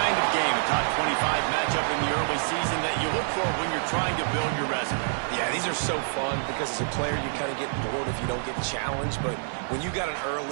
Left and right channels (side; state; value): left; silent; digital silence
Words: of game, a top 25 matchup in the early season that you look for when you're trying to build your resume. Yeah, these are so fun because as a player you kind of get bored if you don't get challenged, but when you got an